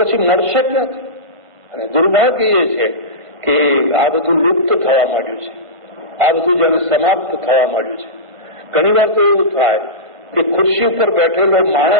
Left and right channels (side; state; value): left; late; 1.5 ms